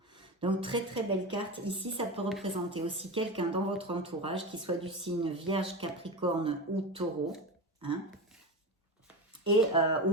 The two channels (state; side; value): normal; both; correlation 0.22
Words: Donc très très belle carte. Ici, ça peut représenter aussi quelqu'un dans votre entourage qui soit du signe Vierge, Capricorne ou Taureau, hein, et